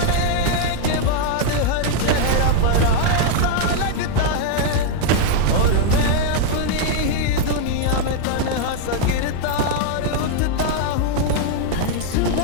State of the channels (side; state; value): both; different; correlation 0.00